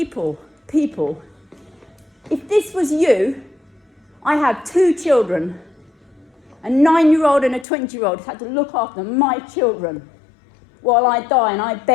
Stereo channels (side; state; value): right; drops out; at 7.7 s